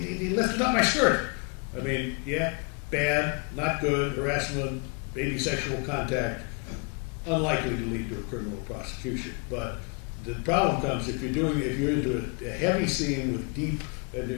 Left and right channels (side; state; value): right; quieter; 35.6 dB